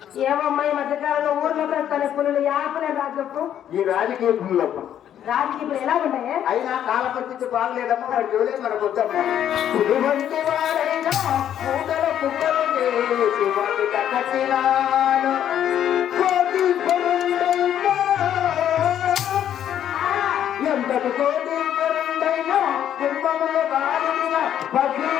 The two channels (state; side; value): quieter; right; 10.3 dB